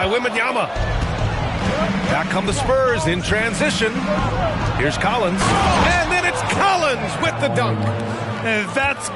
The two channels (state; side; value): identical; both; correlation 1.00